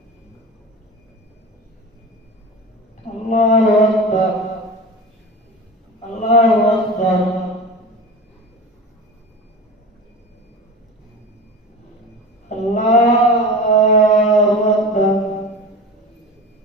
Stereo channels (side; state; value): both; normal; correlation 0.32